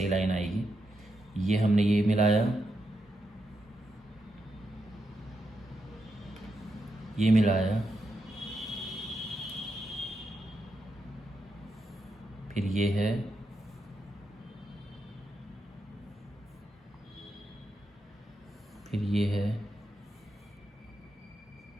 लाइन आएगी। ये हमने ये मिलाया, ये मिलाया, फिर ये है, फिर ये है,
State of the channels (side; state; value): both; normal; correlation 0.84